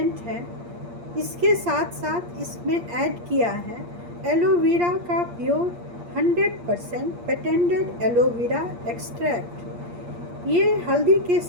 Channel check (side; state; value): left; late; 8.5 ms